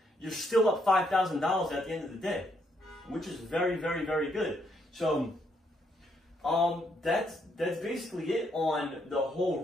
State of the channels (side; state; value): both; normal; correlation 0.74